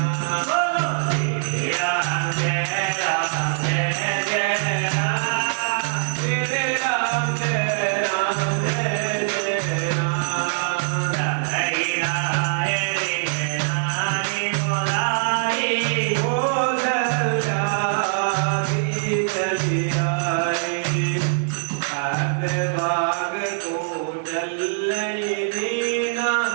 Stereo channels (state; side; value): silent; left; digital silence